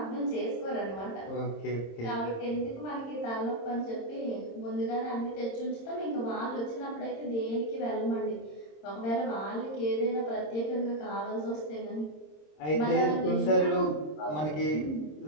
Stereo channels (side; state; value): right; late; 26 ms